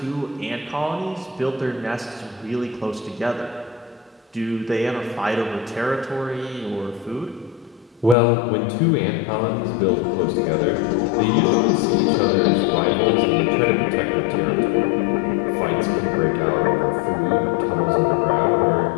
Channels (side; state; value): right; drops out; at 8.2 s